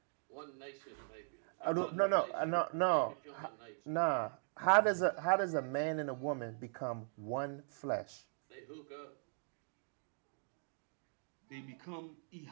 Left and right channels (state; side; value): silent; left; digital silence